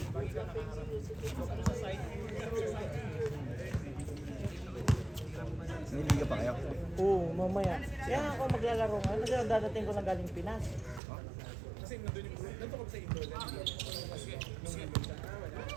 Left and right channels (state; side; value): drops out; left; at 11.0 s